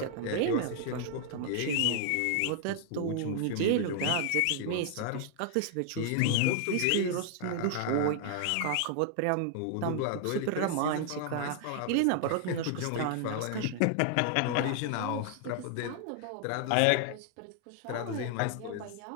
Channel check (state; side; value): different; both; correlation 0.00